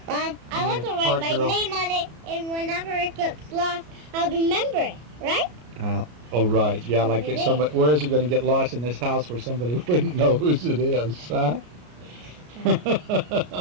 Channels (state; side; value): late; left; 33 ms